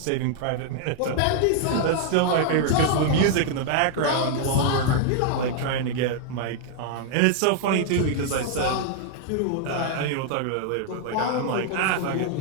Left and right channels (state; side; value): different; both; correlation 0.00